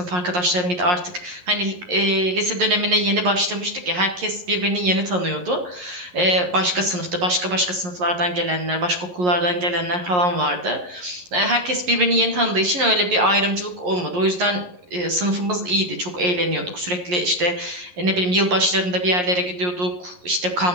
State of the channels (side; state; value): left; late; 11 ms